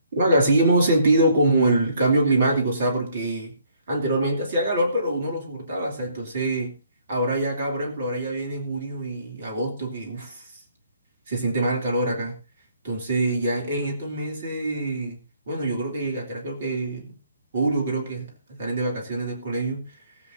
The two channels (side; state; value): both; inverted; correlation -0.65